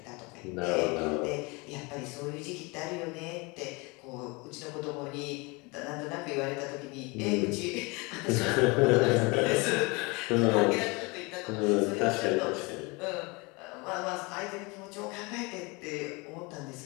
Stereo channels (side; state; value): right; quieter; 27.1 dB